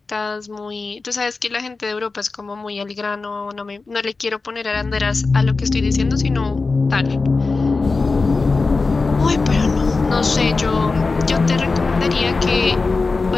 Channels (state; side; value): quieter; right; 4.0 dB